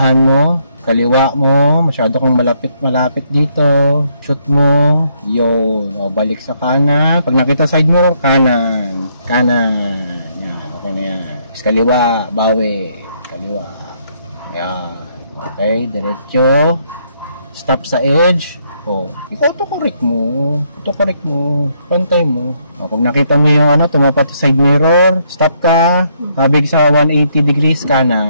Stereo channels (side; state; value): both; inverted; correlation -0.72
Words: mo. Kaliwa mo. Masyado kang malapit dito. Shoot mo. Yun. Balik sa kanan. Pag nakita side mirror, kanan. Yan. Okay na yan. Kaliwa. Bawi. Kaliwa. Yan. Okay. Diretso. Stop sa edge. Autocorrect mo. Pantay mo. Pag nakita mo yung tumapat sa side mirror, stop ka. Kabig sa 180 degrees